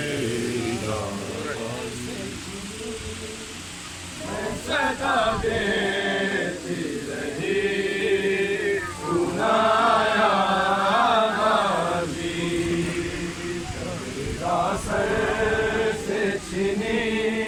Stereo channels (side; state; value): both; identical; correlation 1.00